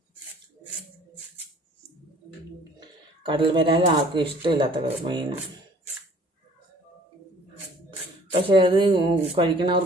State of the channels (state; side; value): normal; both; correlation 0.54